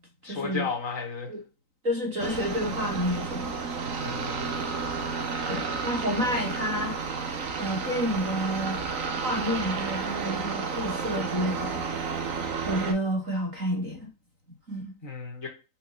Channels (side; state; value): left; late; 3.9 ms